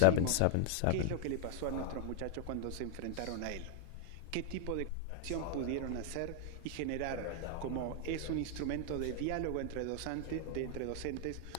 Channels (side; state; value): both; different; correlation 0.00